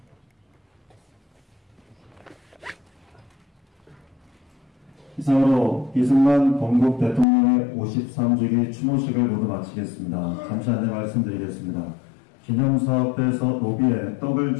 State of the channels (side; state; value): right; drops out; at 7.2 s